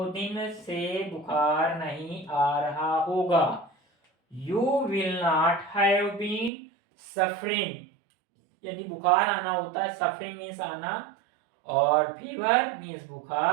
दिन से बुखार नहीं आ रहा होगा। You will not have been suffering, यदि बुखार आना होता है, सफरिंग मीन्स आना, और फीवर मीन्स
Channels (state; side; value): drops out; left; at 6.5 s